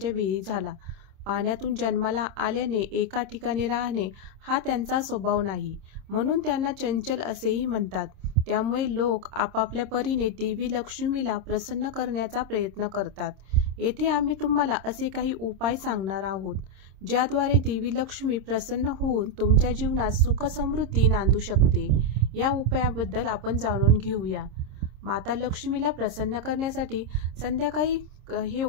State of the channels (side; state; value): left; late; 26 ms